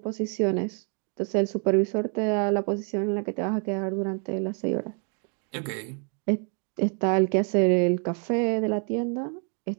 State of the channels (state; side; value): quieter; left; 39.8 dB